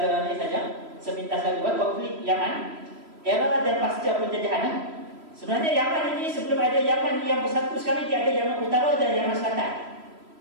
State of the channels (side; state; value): left; late; 3.0 ms